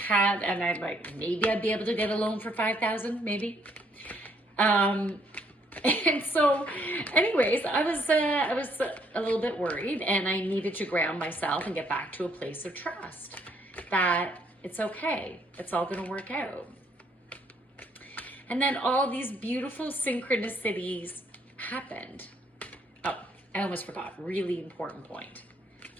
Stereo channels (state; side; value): normal; both; correlation 0.68